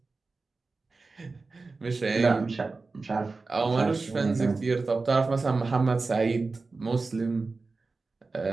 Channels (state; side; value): quieter; left; 3.8 dB